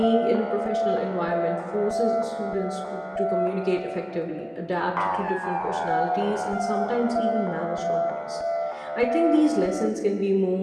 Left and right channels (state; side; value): identical; both; correlation 1.00